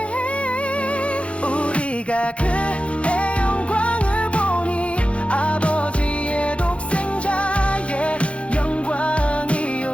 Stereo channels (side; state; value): right; late; 0.061 ms